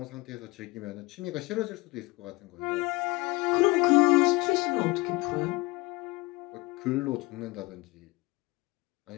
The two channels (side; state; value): right; quieter; 22.3 dB